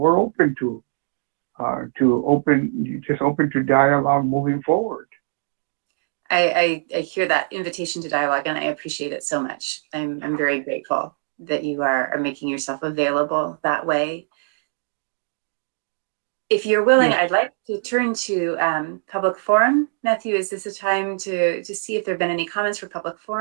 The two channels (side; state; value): left; silent; digital silence